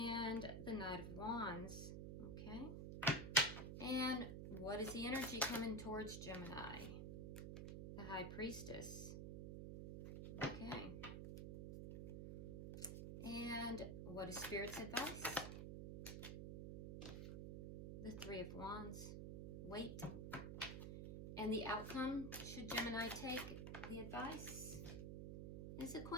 the Knight of Wands. Okay. And what is the energy coming towards Gemini? The High Priestess. Okay. And what is Spirit's advice? The Three of Wands. Wait. And the outcome, should Gemini take the advice, is the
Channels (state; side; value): noise; right; hum, 5 dB below the sound